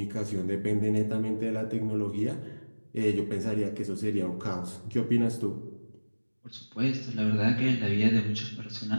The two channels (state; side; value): inverted; both; correlation -1.00